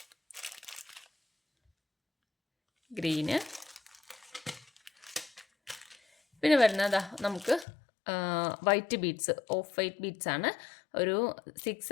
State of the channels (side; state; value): right; drops out; at 7.7 s